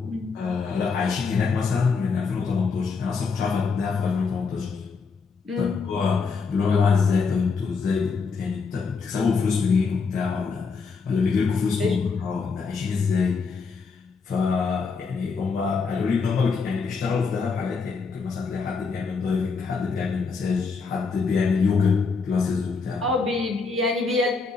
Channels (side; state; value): right; quieter; 4.9 dB